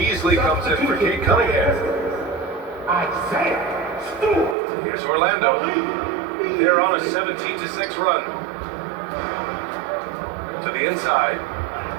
comes in for Kate Cunningham. Here's Orlando. They're on a 17-6 run. To the inside.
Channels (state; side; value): drops out; left; at 4.5 s